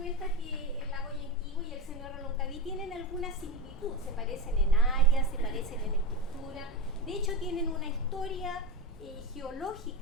que el lago Yanquihue y el seno de Reloncaví tienen alguna similitud, se parecen en área, se parecen en estructura, de hecho tienen una historia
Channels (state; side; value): normal; both; correlation 0.17